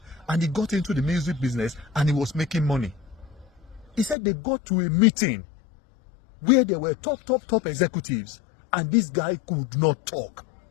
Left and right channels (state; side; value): drops out; right; at 4.2 s